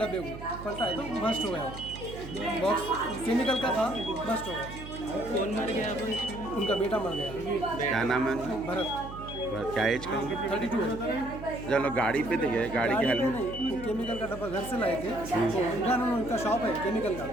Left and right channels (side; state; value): right; noise; hum, 12 dB below the sound